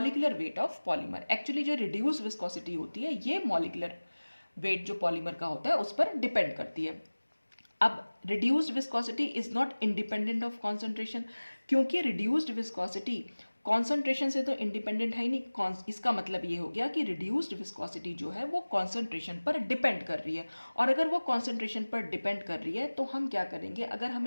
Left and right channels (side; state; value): both; inverted; correlation -1.00